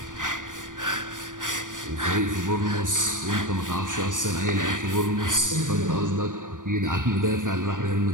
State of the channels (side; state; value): left; late; 0.88 ms